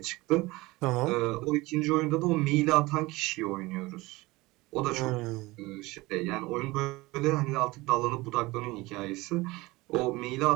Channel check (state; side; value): quieter; left; 21.3 dB